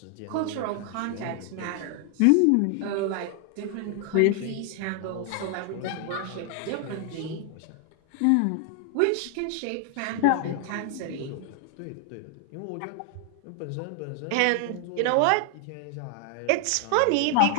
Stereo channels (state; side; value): different; both; correlation 0.00